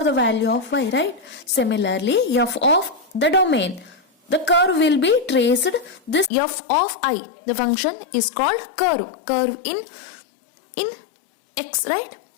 the value of y, right? Similarly, f of the domain, the curve will be traced. This f of I, the function is called curve in x, right?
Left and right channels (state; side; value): drops out; right; at 6.3 s